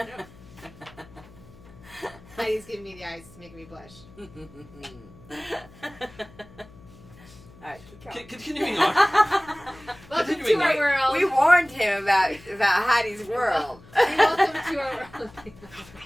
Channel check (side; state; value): left; noise; hum, 22 dB below the sound